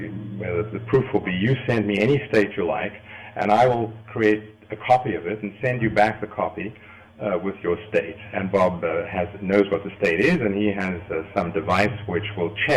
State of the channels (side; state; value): both; identical; correlation 1.00